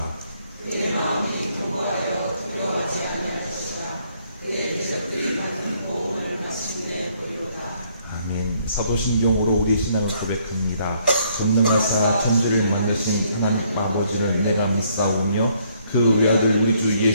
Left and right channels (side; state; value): both; inverted; correlation -0.67